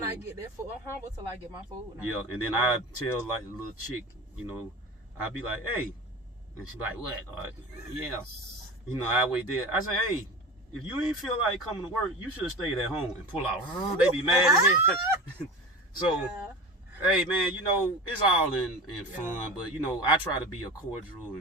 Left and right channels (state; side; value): normal; both; correlation 0.31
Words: I get that food. I'm humble till I get my food. Yeah, and then I tell like the little chick, I be like, hey, and she be like, what? Yeah. I wait there. I say, hey, if you ain't feel like coming to work, you should have stayed at home and pull out. They be mad at me. So, Yeah. hey, man, you know, it's all in fun, but, you know, I try to be a cordial